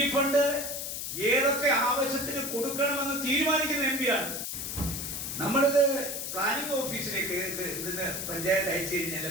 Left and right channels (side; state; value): left; noise; hiss, 4 dB below the sound